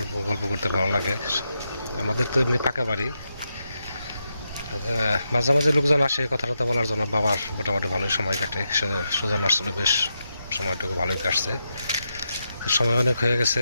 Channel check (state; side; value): inverted; both; correlation -0.85